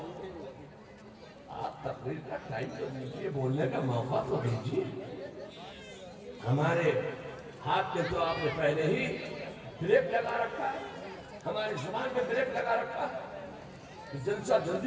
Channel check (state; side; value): identical; both; correlation 1.00